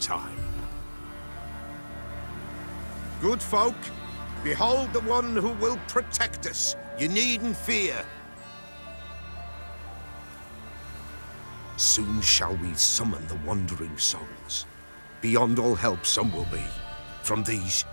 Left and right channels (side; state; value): both; inverted; correlation -1.00